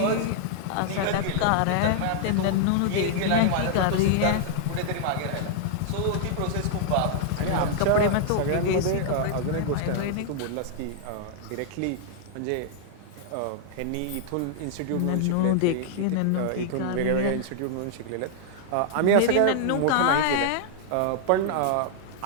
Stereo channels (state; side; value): different; both; correlation -0.01